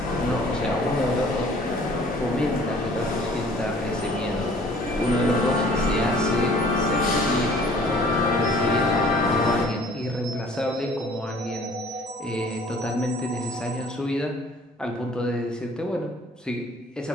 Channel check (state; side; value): normal; both; correlation 0.53